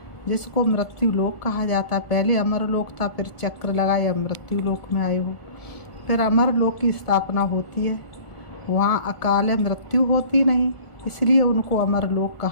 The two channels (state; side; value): late; right; 1.7 ms